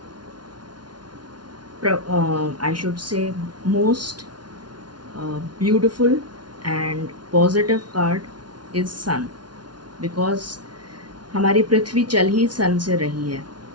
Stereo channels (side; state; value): left; late; 0.70 ms